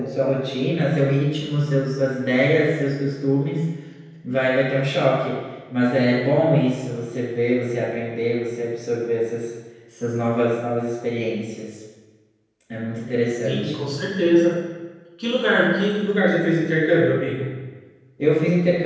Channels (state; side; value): identical; both; correlation 1.00